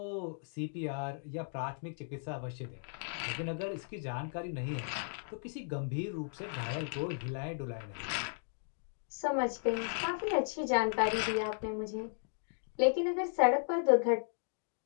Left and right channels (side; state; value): right; silent; digital silence